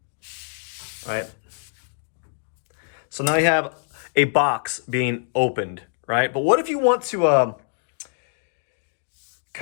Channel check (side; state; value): right; silent; digital silence